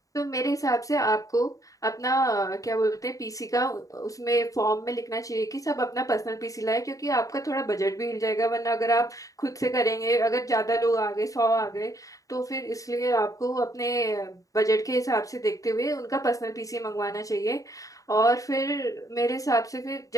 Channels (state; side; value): late; right; 0.16 ms